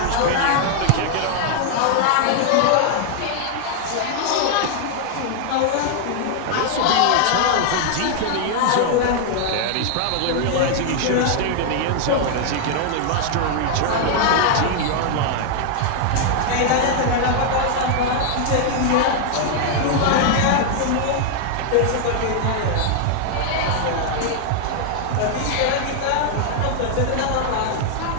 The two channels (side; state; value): both; different; correlation 0.00